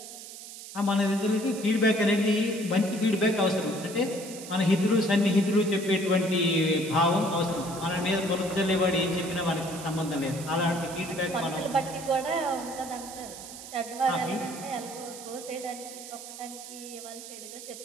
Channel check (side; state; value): right; noise; hiss, 13 dB below the sound